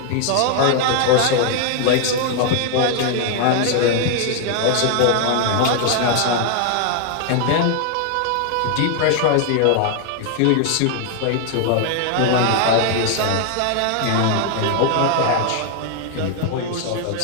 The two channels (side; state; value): both; different; correlation 0.00